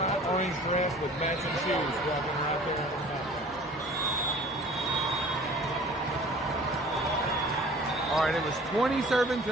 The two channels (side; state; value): both; normal; correlation 0.47